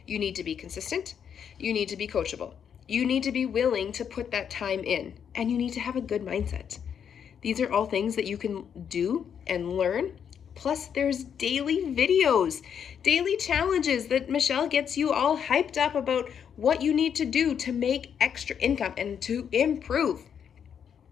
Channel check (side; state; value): right; quieter; 7.9 dB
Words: You need to be consistent. You need to be coachable. You need to be willing to put that time in, and you need to have a good mindset. These are all things that you can do and learn. Plus, there's daily videos, daily challenges that Michelle gets you all hyped up about what you need to do to make extra income and to improve.